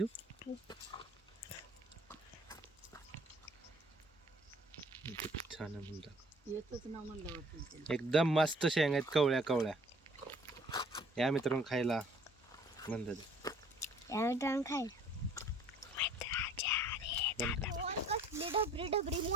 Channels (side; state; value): both; normal; correlation 0.55